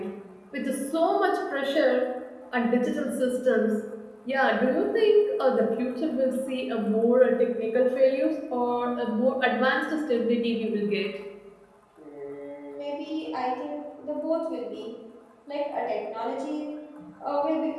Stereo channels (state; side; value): identical; both; correlation 1.00